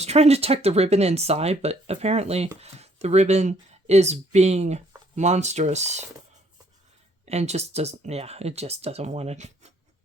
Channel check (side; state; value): both; normal; correlation 0.64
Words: trying to tuck the ribbon inside, but apparently the ribbon is being monstrous and just doesn't, it just doesn't want to